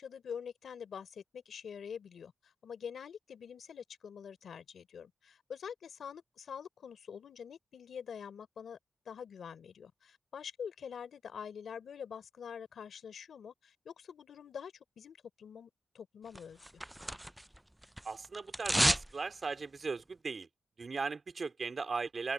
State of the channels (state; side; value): normal; both; correlation 0.92